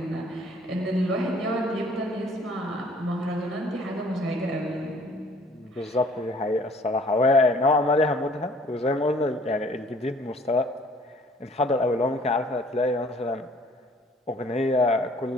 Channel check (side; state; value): both; normal; correlation 0.56